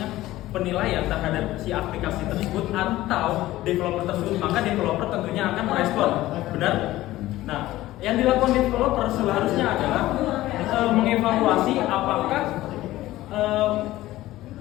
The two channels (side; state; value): right; quieter; 16.2 dB